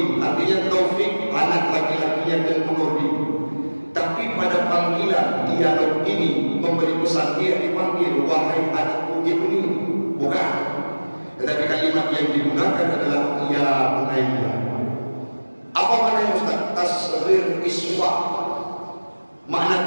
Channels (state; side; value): inverted; both; correlation -1.00